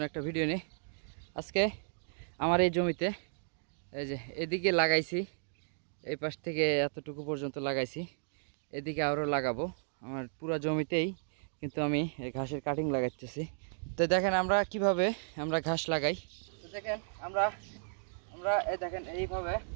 একটা ভিডিও নিয়ে। আজকে আমার এই জমিতে এই যে এদিকে লাগাইছি, এই পাশ থেকে এতটুকু পর্যন্ত লাগাইছি, এদিকে আরও লাগাবো। আমার পুরো জমিতেই কিন্তু আমি এই ঘাসের কাটিং লাগাইতেছি। তো দেখেন আমরা কিভাবে আমরা ঘাস লাগাই। তো দেখেন আমরা আমরা এই দেখেন এইভাবে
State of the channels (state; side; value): silent; left; digital silence